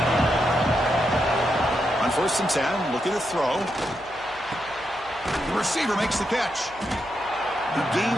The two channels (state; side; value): noise; right; hum, 24 dB below the sound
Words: On 1st and 10, looking to throw. The receiver makes the catch. He